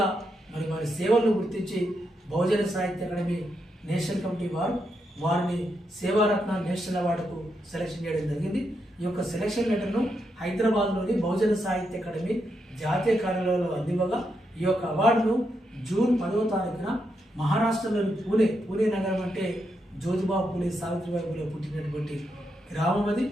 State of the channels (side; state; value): both; normal; correlation 0.82